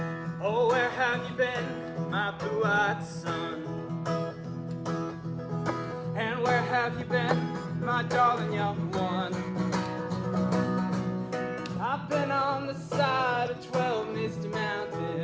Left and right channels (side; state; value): both; identical; correlation 1.00